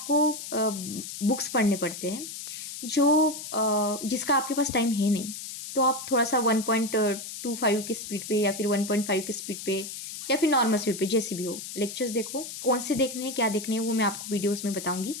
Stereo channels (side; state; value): left; noise; hiss, 9 dB below the sound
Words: बुक्स पढ़ने पड़ते हैं, जिसका आपके पास टाइम है नहीं। तो आप थोड़ा सा 1.25 की स्पीड पे या फिर 1.5 की स्पीड पे या फिर नॉर्मल स्पीड पे, जैसे भी हो, लेक्चर्स देखो। कौन से देखने हैं, क्या देखने हैं, वो मैं आपको वीडियोस में बताऊंगी,